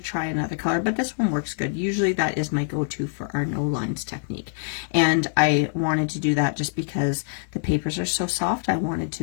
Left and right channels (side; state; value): right; silent; digital silence